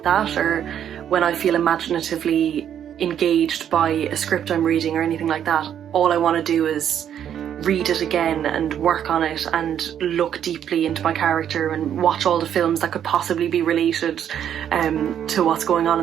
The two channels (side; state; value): left; quieter; 9.5 dB